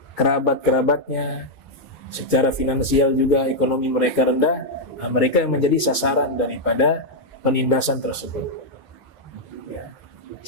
kerabat-kerabatnya, secara finansial juga ekonomi mereka rendah. Nah, mereka yang menjadi sasaran daripada penindasan tersebut. Ya.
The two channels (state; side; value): normal; both; correlation -0.02